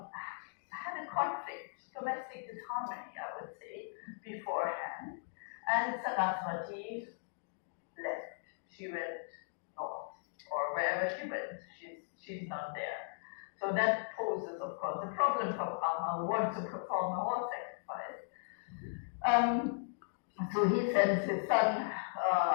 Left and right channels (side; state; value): right; silent; digital silence